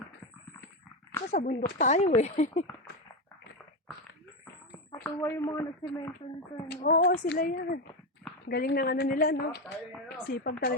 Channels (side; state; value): both; normal; correlation 0.12